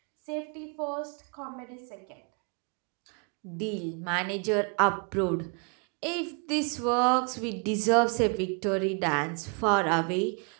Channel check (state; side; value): quieter; left; 36.2 dB